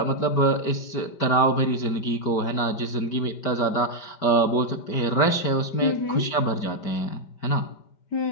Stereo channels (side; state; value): right; late; 5.1 ms